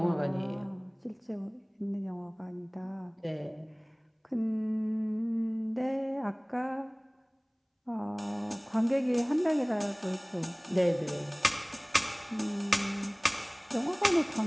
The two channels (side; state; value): both; identical; correlation 1.00